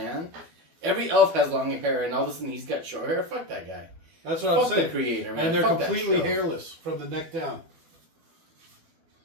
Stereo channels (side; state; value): left; late; 12 ms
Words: Every elf has long hair, and all of a sudden he's got short hair. Fuck that guy. That's what I'm Fuck the saying. creator, man. And they're Fuck that completely show. hairless from the neck down.